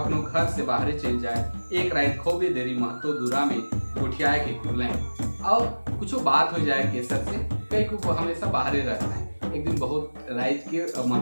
घर से बाहर चल जाए, एक रात खोबे देरी महतो दूरा में गोठियाए के खुले और कुछ बात हो जाए केसर से, कई को हमेशा बाहर रहता है। एक दिन बहुत रात के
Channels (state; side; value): inverted; both; correlation -1.00